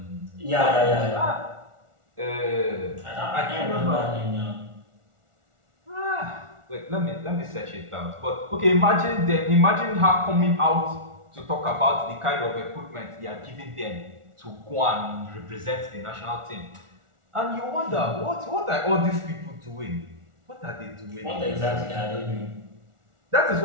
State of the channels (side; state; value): left; late; 1.4 ms